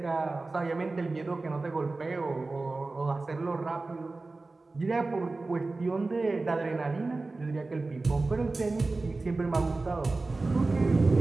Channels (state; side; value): quieter; left; 3.4 dB